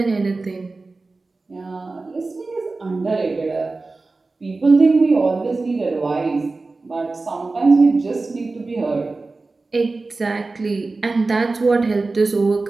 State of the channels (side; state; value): left; quieter; 3.6 dB